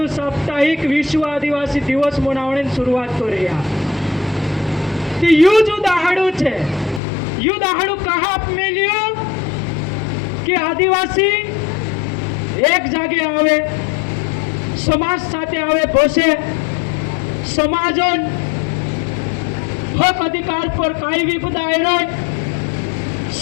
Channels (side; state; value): right; drops out; at 7.0 s